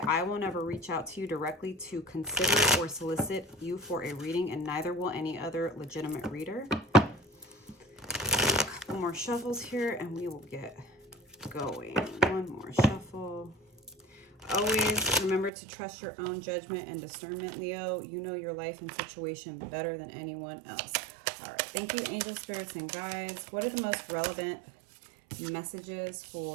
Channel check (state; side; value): drops out; left; at 15.5 s